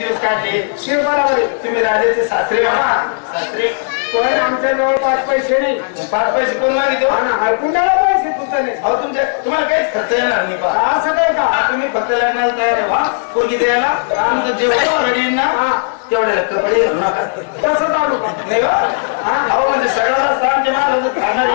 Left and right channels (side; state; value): right; silent; 70 dB below the other